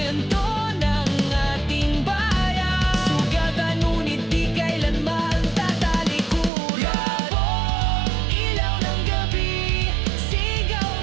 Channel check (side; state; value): left; drops out; at 6.5 s